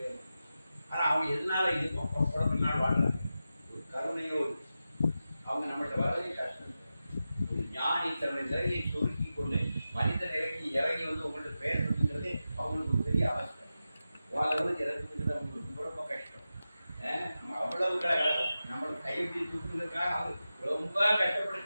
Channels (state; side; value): inverted; both; correlation -0.92